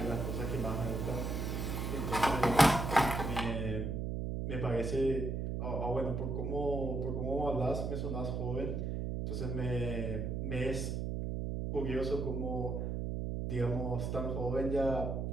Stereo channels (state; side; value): noise; right; hum, 1 dB below the sound